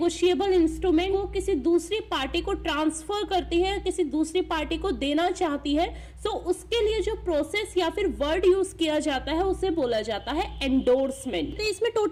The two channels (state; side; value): identical; both; correlation 1.00